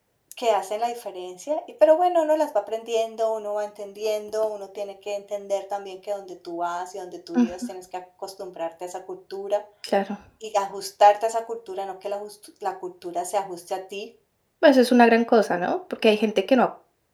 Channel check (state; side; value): identical; both; correlation 1.00